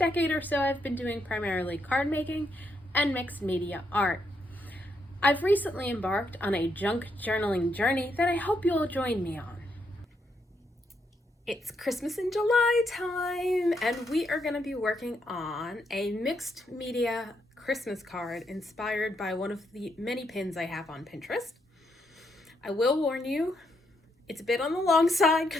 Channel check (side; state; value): both; normal; correlation 0.78